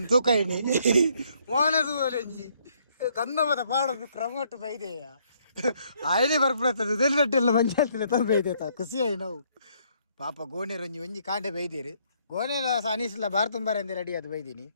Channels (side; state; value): both; inverted; correlation -0.68